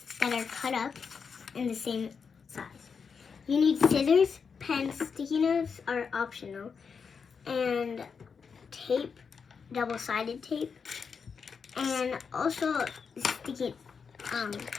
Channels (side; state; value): right; quieter; 5.9 dB